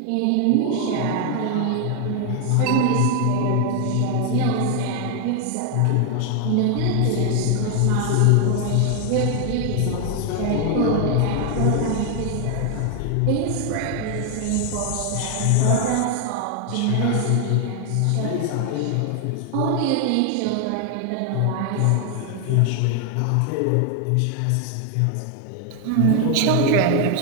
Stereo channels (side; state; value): both; different; correlation 0.00